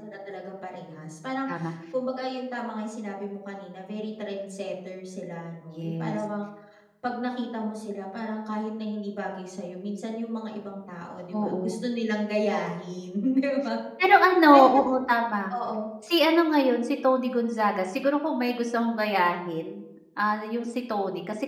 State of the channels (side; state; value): both; identical; correlation 1.00